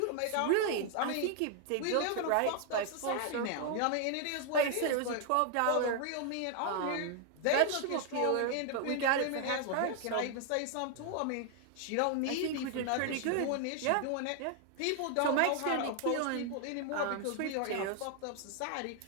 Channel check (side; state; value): both; different; correlation 0.00